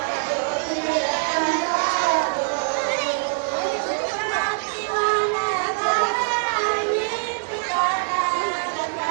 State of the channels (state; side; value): silent; left; digital silence